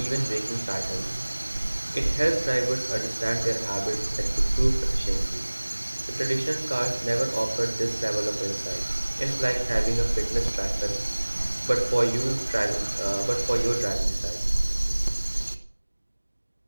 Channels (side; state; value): both; inverted; correlation -1.00